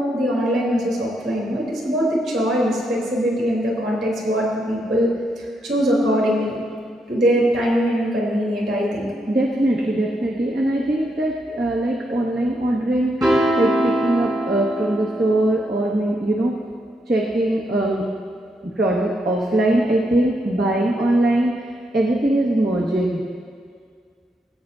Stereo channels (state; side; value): normal; both; correlation 0.79